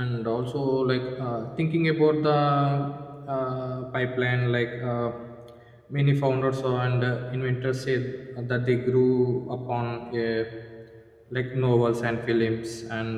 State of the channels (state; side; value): identical; both; correlation 1.00